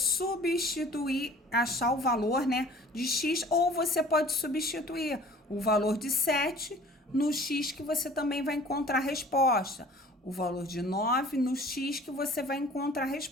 achar o valor, né, de x, ou você pode substituir o valor de 7 no x, que você também vai encontrar a resposta. O valor de 9 no x, que você vai encontrar a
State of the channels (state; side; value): normal; both; correlation 0.48